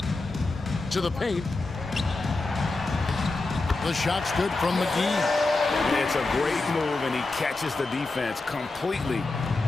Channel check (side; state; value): right; quieter; 3.3 dB